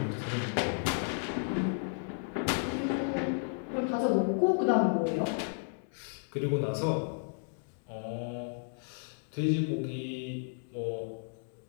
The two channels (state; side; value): silent; right; digital silence